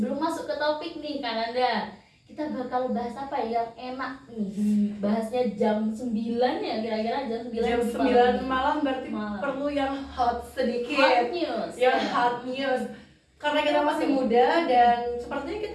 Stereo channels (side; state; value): both; identical; correlation 1.00